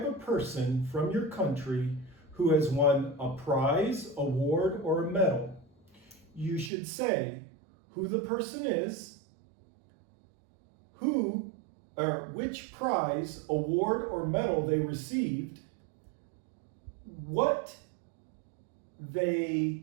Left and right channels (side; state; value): left; drops out; at 6.7 s